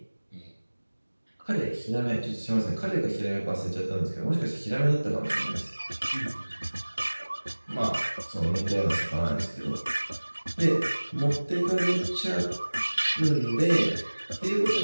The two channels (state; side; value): inverted; both; correlation -1.00